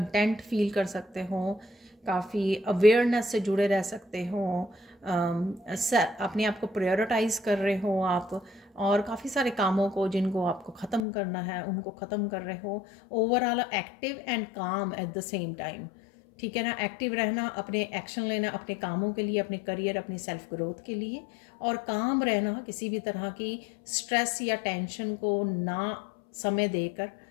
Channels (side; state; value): right; drops out; at 11.0 s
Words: फील कर सकते हो, काफ़ी अवेयरनेस से जुड़े रह सकते हो, अपने आप को प्रायोरिटाइज़ कर रहे हो आप, और काफ़ी सारे कामों को जिनको आपको ख़त्म करना है उनको ख़त्म कर रहे हो। ओवरऑल एक्टिव एंड काम एट द सेम टाइम, ठीक है ना। एक्टिव रहना, अपने एक्शन लेना अपने कामों के लिए, अपने करियर, अपनी सेल्फ ग्रोथ के लिए, और काम रहना, किसी भी तरह की स्ट्रेस या टेंशन को ना समय देकर